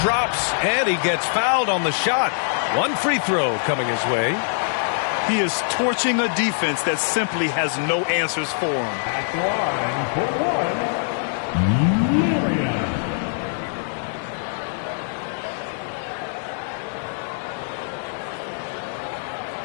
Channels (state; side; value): silent; right; digital silence